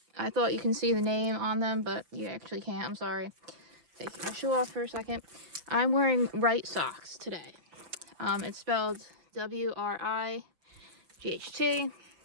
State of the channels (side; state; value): left; late; 5.9 ms